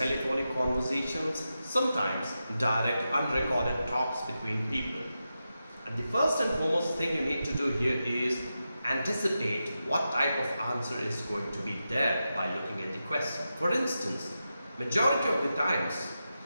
conversations, sometimes direct unrecorded talks between people. And the first and foremost thing you need to do here is anticipate what type of answer is going to be there by looking at the question. For instance, majority of the times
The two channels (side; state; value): both; inverted; correlation -0.90